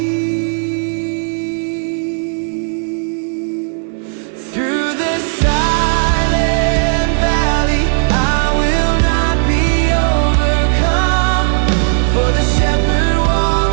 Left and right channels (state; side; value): silent; left; digital silence